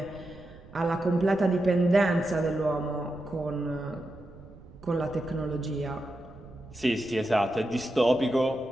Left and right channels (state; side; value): noise; right; rumble, 20 dB below the sound